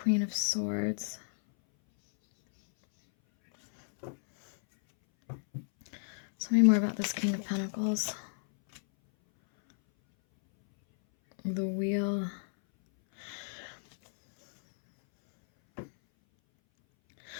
of Swords. Tell me more about this King of Pentacles. The Wheel.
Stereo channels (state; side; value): silent; right; 57 dB below the other